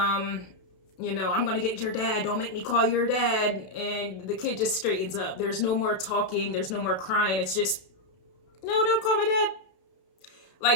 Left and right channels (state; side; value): late; right; 32 ms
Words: going to get your dad. Don't make me call your dad. And the kid just straightens up. There's no more talking. There's no more crying. It's just, no, don't call my dad.